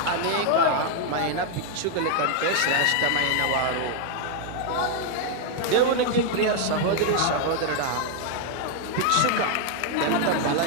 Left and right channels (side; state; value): both; different; correlation 0.00